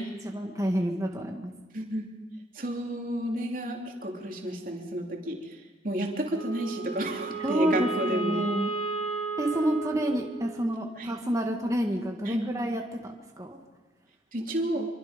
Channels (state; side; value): normal; both; correlation 0.70